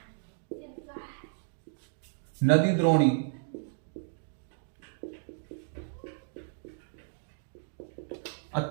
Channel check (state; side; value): silent; left; digital silence